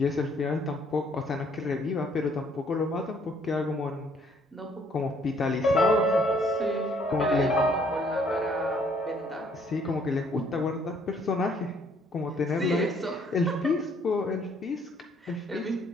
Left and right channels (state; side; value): normal; both; correlation 0.64